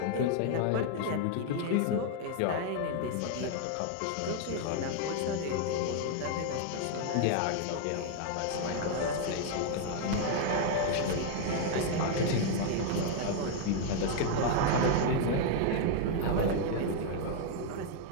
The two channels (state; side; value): different; both; correlation 0.00